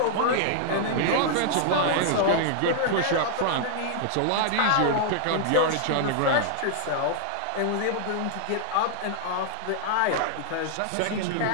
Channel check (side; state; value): both; different; correlation -0.01